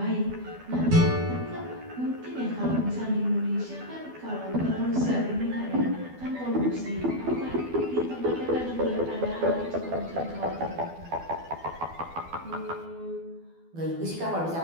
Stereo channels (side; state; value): left; late; 12 ms